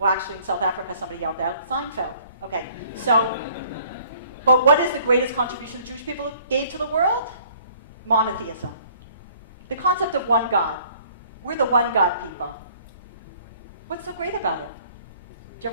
actually, in South Africa, somebody yelled out, Seinfeld. Okay, so, but what is the greatest contribution the Jewish people gave to the world? Monotheism. The concept of one God. We're the one God people. What's so great about it? Do you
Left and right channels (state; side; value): inverted; both; correlation -0.57